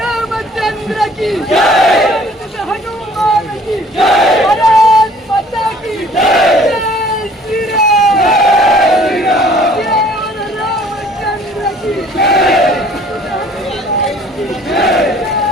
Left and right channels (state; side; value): normal; both; correlation 0.54